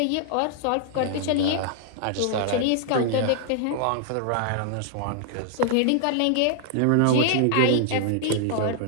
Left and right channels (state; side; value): different; both; correlation 0.00